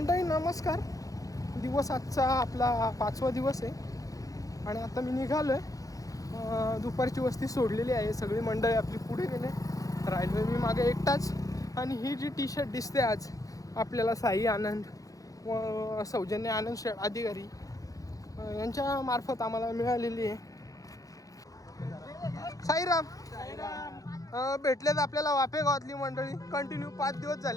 नमस्कार. दिवस आजचा आपला 5वा दिवस आहे आणि आता मी निघालोय. दुपारची वस्ती सोडलेली आहे, सगळी मंडळी आपली पुढे गेले, राहिलोय मी मागे एकटाच. आणि ही जी टी-शर्ट दिसते आज आपल्याला साई आनंद व सौजन्य आनंद अधिकारी यांच्या मार्फत आम्हाला मिळालेली आहे. साईराम भेटलेत आपल्याला वाफे गावातली मंडळी. कंटिन्यू 5 दिवस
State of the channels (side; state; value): right; late; 0.17 ms